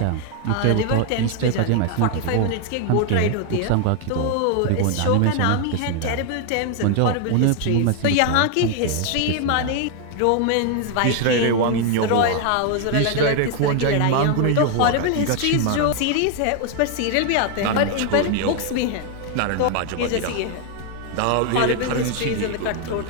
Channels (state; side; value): different; both; correlation 0.00